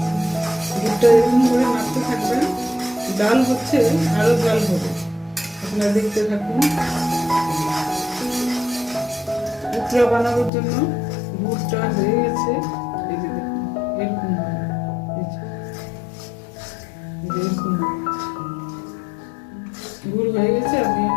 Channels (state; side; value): drops out; right; at 10.5 s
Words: গুড়টা এরকম করে নাড়তে থাকবেন, জাল হচ্ছে আরো জাল হবে, আপনারা দেখতে থাকুন। উখড়া বানানোর জন্য গুড়টা হয়ে গেছে, এই যে দেখুন এরকম হবে, এরকম গুড় হয়ে গেছে। আমি